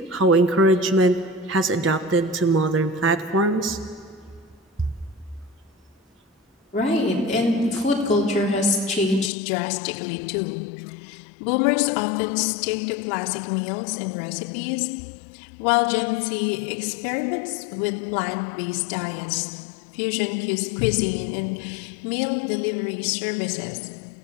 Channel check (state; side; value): drops out; right; at 9.3 s